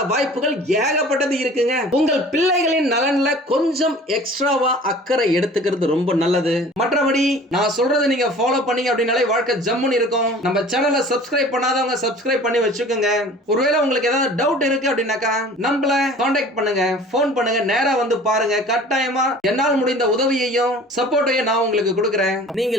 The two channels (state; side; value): normal; both; correlation 0.45